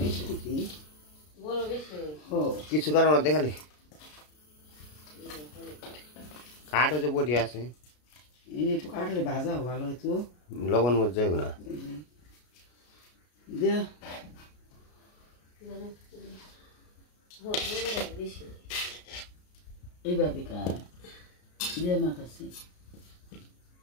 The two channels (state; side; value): late; right; 33 ms